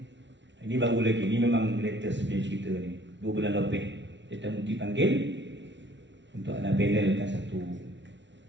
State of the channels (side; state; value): left; late; 0.52 ms